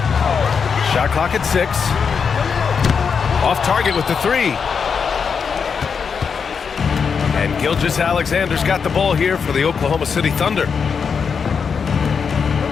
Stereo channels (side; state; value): right; quieter; 6.1 dB